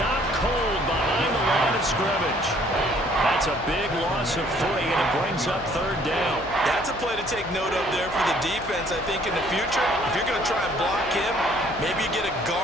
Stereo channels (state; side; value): noise; left; hum, 16 dB below the sound